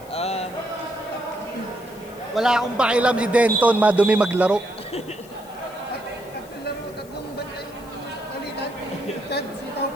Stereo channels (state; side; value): noise; left; hiss, 23 dB below the sound